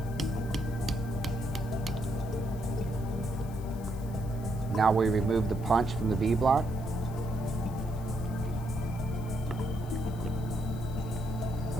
Now we remove the punch from the V-block.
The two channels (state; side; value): noise; left; hiss, 22 dB below the sound